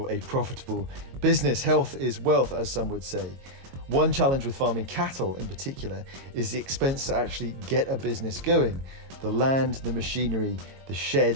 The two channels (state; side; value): late; left; 22 ms